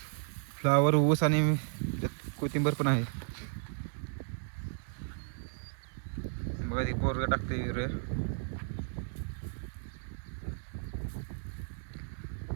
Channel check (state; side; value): silent; left; 55 dB below the other